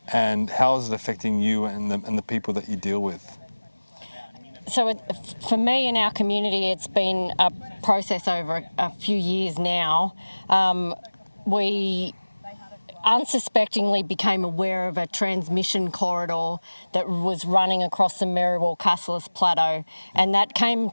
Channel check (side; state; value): both; inverted; correlation -1.00